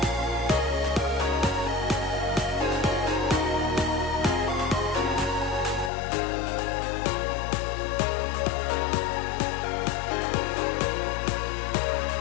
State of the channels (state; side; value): drops out; right; at 5.9 s